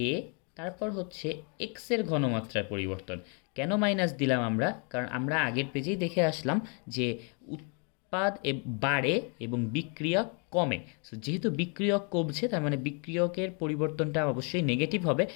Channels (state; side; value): quieter; right; 37.3 dB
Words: তারপর হচ্ছে এক্স এর ঘনমাত্রার পরিবর্তন। কেন মাইনাস দিলাম আমরা? কারণ আমরা আগের পেজেই দেখে আসলাম যে উৎপাদ বাড়ে এবং বিক্রিয়ক কমে। সো যেহেতু বিক্রিয়ক কমছে তার মানে বিক্রিয়কের পরিবর্তনটা অবশ্যই নেগেটিভ হবে,